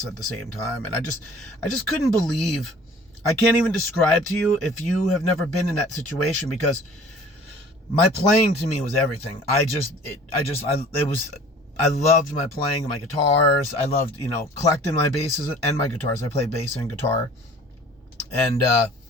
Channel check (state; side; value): normal; both; correlation 0.48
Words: at the same time. And I just couldn't believe. I can't even describe to you if you have never been in that situation, because my playing to me was everything. I loved my playing, my guitars. I loved, collecting my basses and my guitars. I play bass and guitar. And,